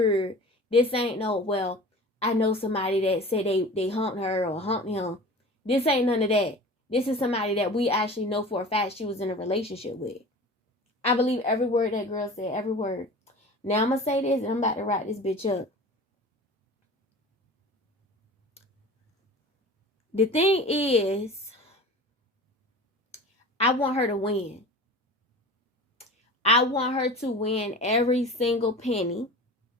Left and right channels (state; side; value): normal; both; correlation 0.38